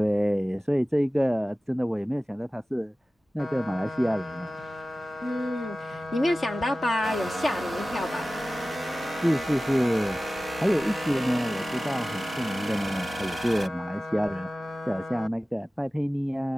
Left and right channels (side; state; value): both; normal; correlation 0.96